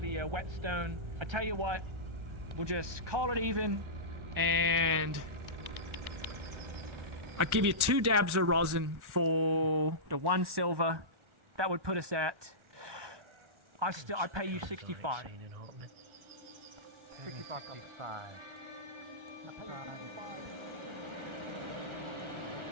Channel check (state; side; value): late; left; 1.4 ms